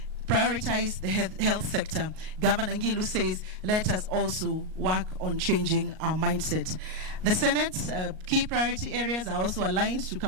Prioritize the health sector. Governor Ngilu says, let us also work on changing our mindset. The Senate's key priority areas are also aligned to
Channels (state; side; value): late; left; 38 ms